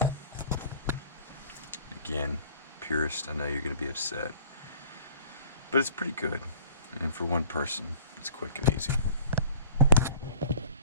Again, purist, I know you're going to be upset. But it's pretty good. And for one person, it's quick and easy.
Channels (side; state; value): both; inverted; correlation -0.48